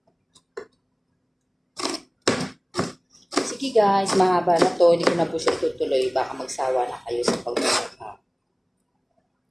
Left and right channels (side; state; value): both; identical; correlation 1.00